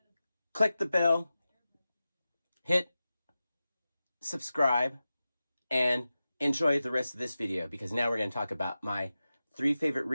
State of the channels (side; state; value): both; inverted; correlation -0.94